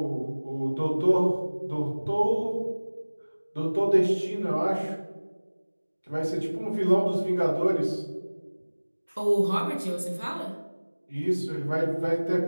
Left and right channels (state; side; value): inverted; both; correlation -1.00